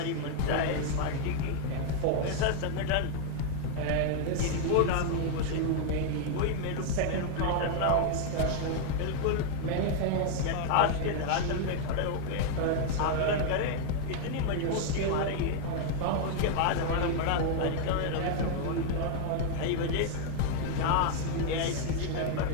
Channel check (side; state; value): both; different; correlation 0.00